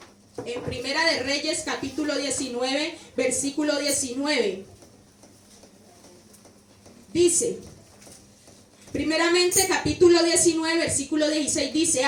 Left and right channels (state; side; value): identical; both; correlation 1.00